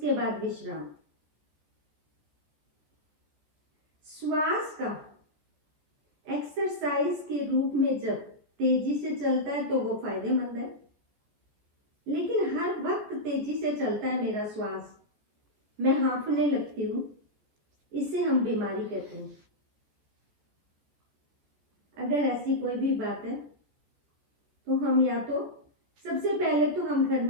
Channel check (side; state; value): left; late; 14 ms